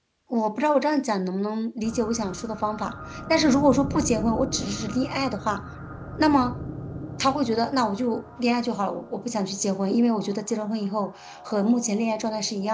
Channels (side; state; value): both; identical; correlation 1.00